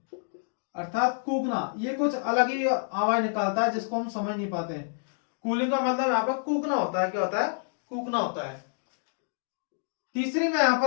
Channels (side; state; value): right; silent; digital silence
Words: अर्थात कूकना। ये कुछ अलग ही आवाज निकालता है जिसको हम समझ नहीं पाते हैं। कूलिंग का मतलब यहाँ पर कूकना होता है। क्या होता है? कूकना होता है। तीसरी मैं यहां